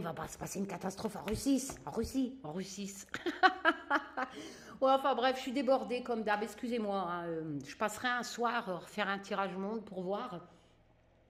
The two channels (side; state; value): both; identical; correlation 1.00